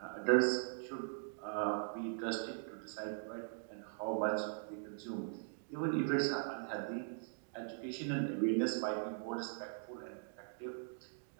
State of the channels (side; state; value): left; silent; digital silence